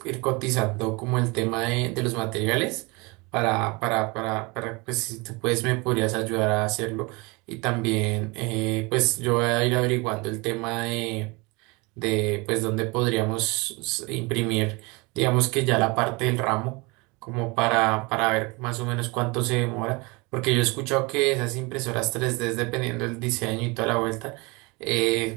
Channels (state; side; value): quieter; left; 26.7 dB